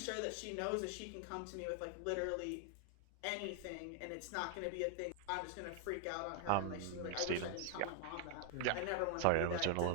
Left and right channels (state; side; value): different; both; correlation 0.00